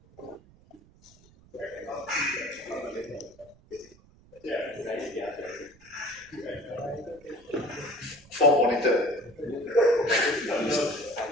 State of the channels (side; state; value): right; noise; rumble, 27 dB below the sound